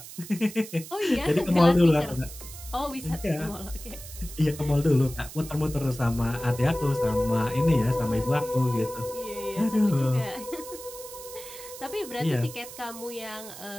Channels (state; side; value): noise; right; hiss, 14 dB below the sound